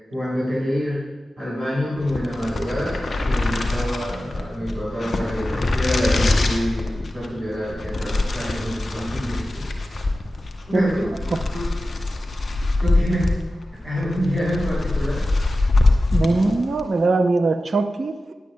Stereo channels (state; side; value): normal; both; correlation 0.94